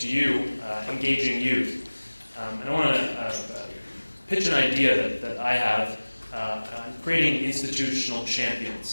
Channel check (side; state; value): both; inverted; correlation -1.00